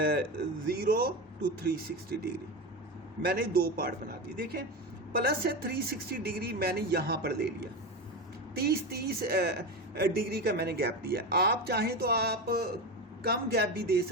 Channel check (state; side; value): normal; both; correlation 0.20